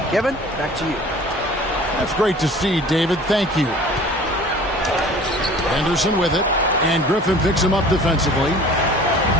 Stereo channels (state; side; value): normal; both; correlation 0.46